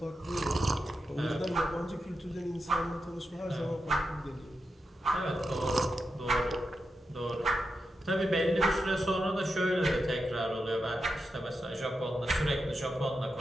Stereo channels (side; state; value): both; normal; correlation 0.88